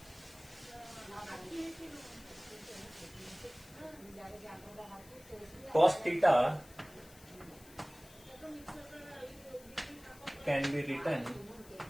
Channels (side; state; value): left; noise; hiss, 21 dB below the sound